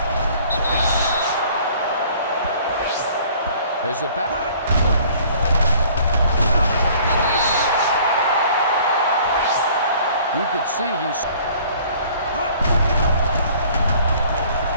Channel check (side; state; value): both; inverted; correlation -0.53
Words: There's the back. You could see he's...